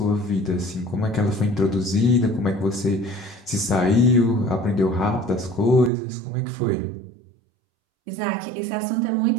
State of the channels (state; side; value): drops out; left; at 5.9 s